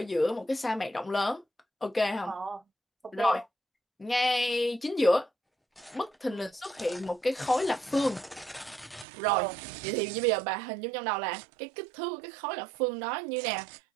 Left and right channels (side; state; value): left; drops out; at 9.1 s